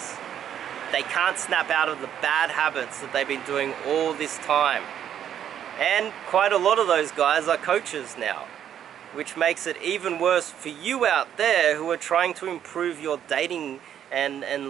They can't snap out of the bad habits that they've been doing all this time. And quite a lot of those guys are coaches now, which makes it even worse for you out there who are trying to improve your dating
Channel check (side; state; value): left; quieter; 9.7 dB